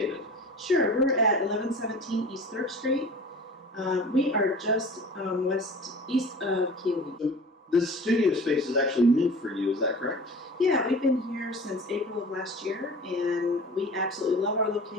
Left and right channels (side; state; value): both; normal; correlation 0.40